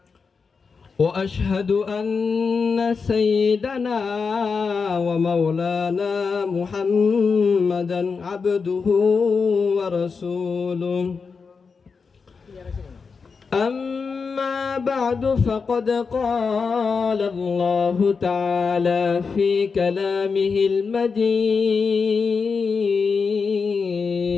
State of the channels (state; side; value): quieter; right; 5.1 dB